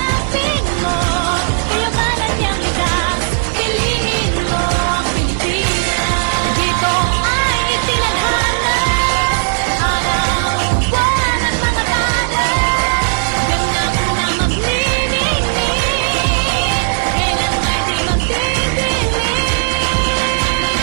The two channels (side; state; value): left; silent; digital silence